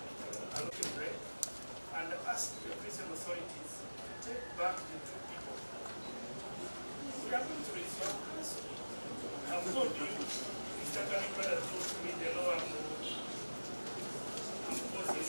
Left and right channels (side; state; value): both; inverted; correlation -1.00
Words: look at break and ask the prison authorities to take back the two people. We are going to resolve this. I've told you, Mr. Kanibada told me the law I'm